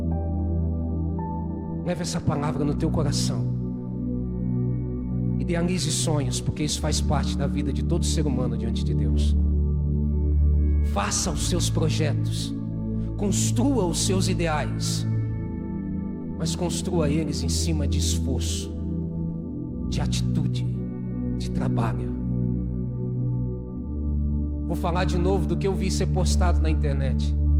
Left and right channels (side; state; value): both; identical; correlation 1.00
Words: Leve essa palavra no teu coração. Idealize sonhos, porque isso faz parte da vida de todo ser humano diante de Deus. Faça os seus projetos, construa os seus ideais, mas construa eles em cima de esforço, de atitude, de trabalho. Vou falar de novo do que eu vi ser postado na internet.